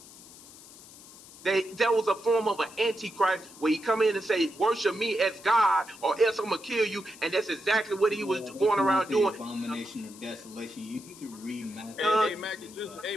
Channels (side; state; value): left; noise; hiss, 19 dB below the sound